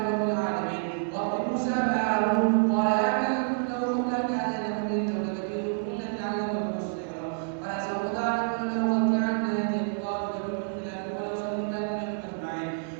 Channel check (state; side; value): silent; left; 59 dB below the other